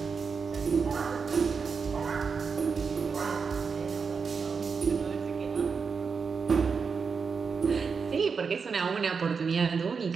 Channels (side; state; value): left; quieter; 5.5 dB